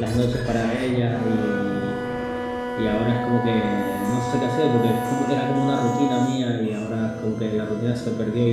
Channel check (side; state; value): both; identical; correlation 1.00